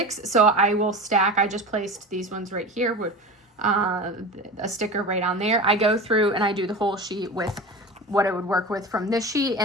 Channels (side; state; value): both; normal; correlation 0.31